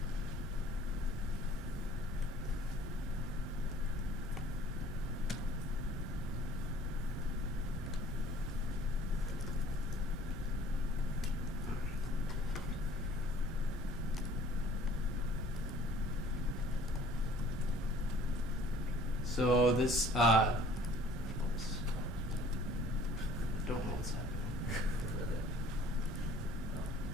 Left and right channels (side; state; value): both; normal; correlation 0.53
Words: So this, oops, I don't know what's happening.